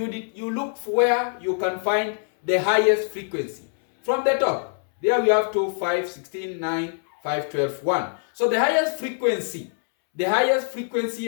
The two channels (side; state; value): right; silent; 63 dB below the other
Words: look for where you can find the highest frequency. From the top, there we have 2, 5, 16, 9, 5, 12, 1. So the highest frequency